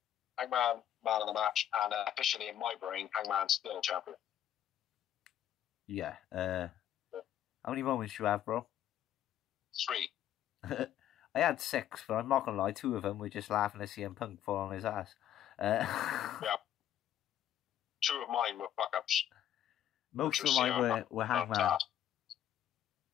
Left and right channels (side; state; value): right; quieter; 11.1 dB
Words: Hangman, man of the match, and officially in my brain, Hangman's still champion. Yeah. How many moments do you have, bro? 3. I had 6, but I'm not gonna lie, 2 of them were just laughing at CM Punk fall on his ass. Yeah. 2 of mine were fuck-ups. Most of mine were Hangman.